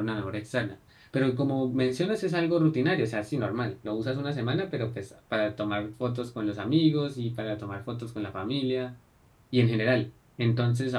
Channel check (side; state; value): both; identical; correlation 1.00